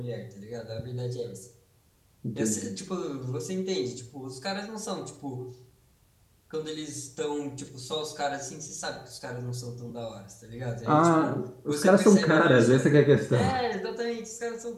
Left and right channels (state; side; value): identical; both; correlation 1.00